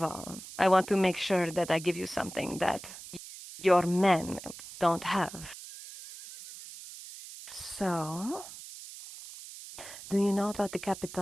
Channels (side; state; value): right; noise; hiss, 14 dB below the sound